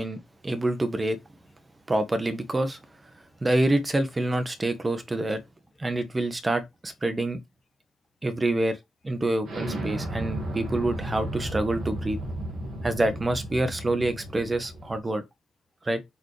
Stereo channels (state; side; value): normal; both; correlation 0.92